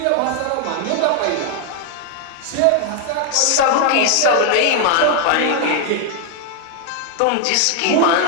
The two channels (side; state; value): both; different; correlation 0.00